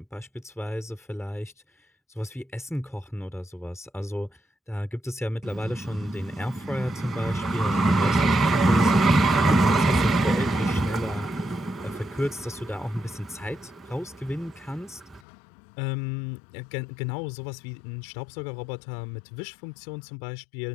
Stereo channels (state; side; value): drops out; right; at 15.2 s